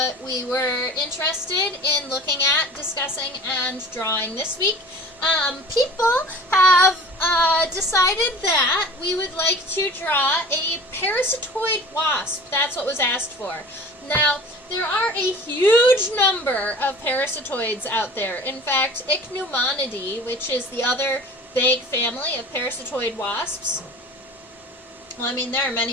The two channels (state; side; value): normal; both; correlation 0.41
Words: we were interested in looking at, discussing, and drawing this week. People have decided that we would like to draw a parasitoid wasp. That's what was asked for. Now, there are a huge number of parasitoids out there. In fact, Ichneumonidea, which is the other big family of parasitoid wasps. Well, I mean, there are